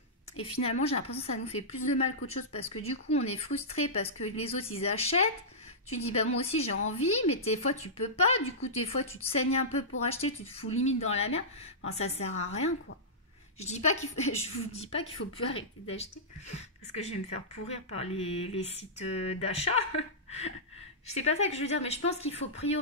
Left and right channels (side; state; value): both; normal; correlation -0.14